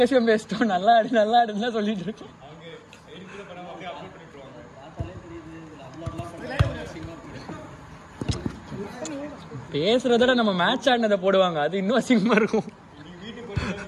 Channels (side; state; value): both; identical; correlation 1.00